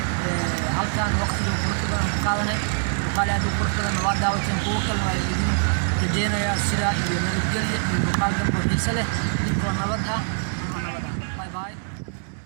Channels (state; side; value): silent; left; 63 dB below the other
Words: halkaan waqtiga qurux badan ku qaadanay muuqaal aad u qurux badan waa daawateen kuwo kale waa idin rajeynayaa sidaa iyo nabadgelyo iyo muuqaal dambe xiise leh idinkoo nabad ah